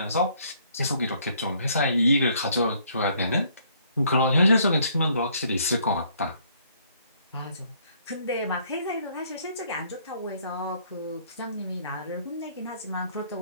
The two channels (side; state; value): both; inverted; correlation -0.64